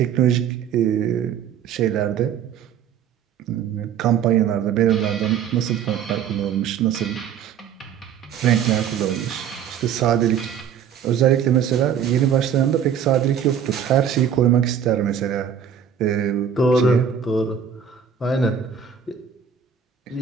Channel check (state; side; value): quieter; left; 8.1 dB